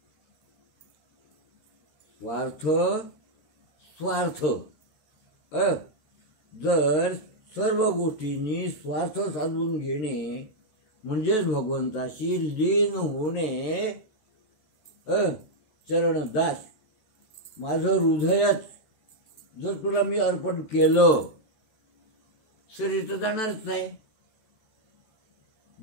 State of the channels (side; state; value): right; late; 14 ms